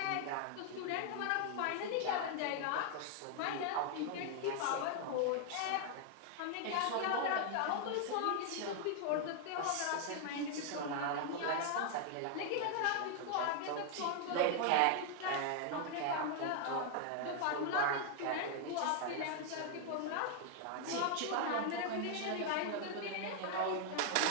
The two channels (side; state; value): both; different; correlation 0.00